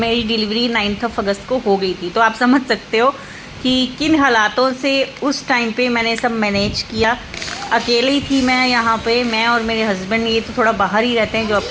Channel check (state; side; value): identical; both; correlation 1.00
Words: डिलीवरी 9 अगस्त को हो गई थी। तो आप समझ सकते हो कि किन हालातों से उस टाइम पे मैंने सब मैनेज किया। अकेले ही थी मैं यहाँ पे, मैं और मेरे हस्बैंड, ये तो थोड़ा बाहर ही रहते हैं जॉब